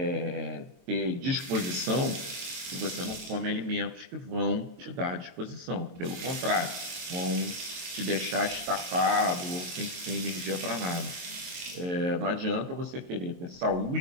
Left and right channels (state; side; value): late; left; 22 ms